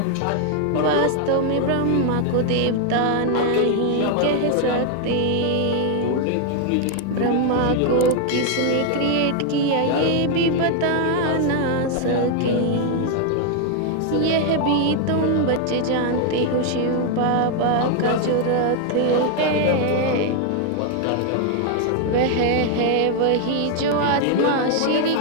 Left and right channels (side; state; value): both; different; correlation 0.00